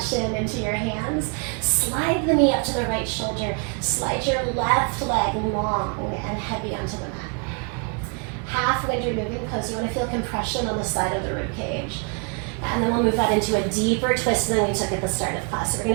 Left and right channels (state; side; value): quieter; left; 36.7 dB